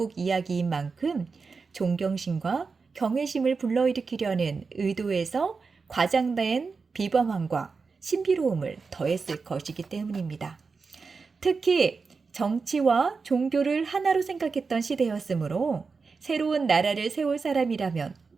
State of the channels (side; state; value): left; quieter; 4.7 dB